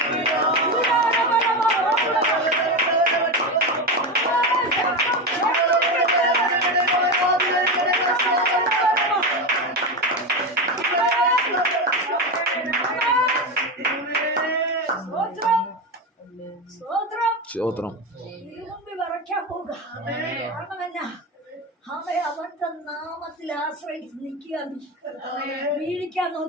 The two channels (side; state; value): both; normal; correlation 0.17